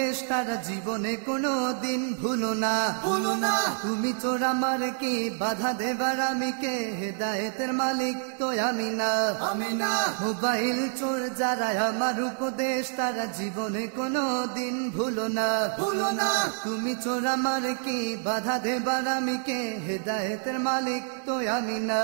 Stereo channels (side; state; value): left; silent; 60 dB below the other